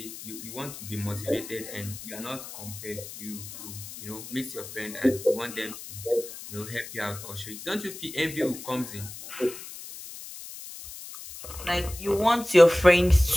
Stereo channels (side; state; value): left; noise; hiss, 12 dB below the sound